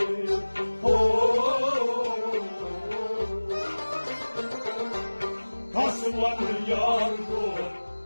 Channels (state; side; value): inverted; both; correlation -1.00